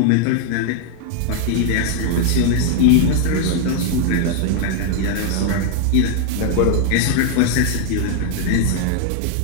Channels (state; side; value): different; both; correlation 0.00